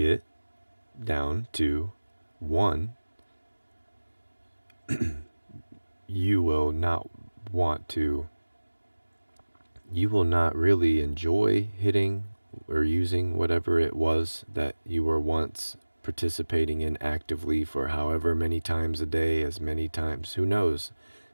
down to 1, you will not really enjoy hitting or using whatever it was that you were once participating in actively for however many times a day, as many times, who knows.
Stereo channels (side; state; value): both; inverted; correlation -1.00